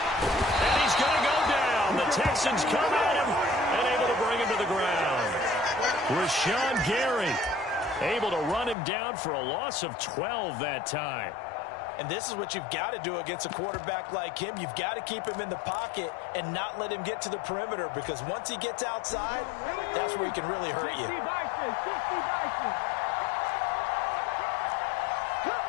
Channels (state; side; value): drops out; right; at 8.8 s